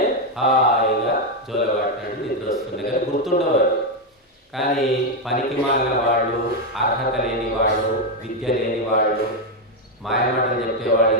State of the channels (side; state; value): both; normal; correlation 0.04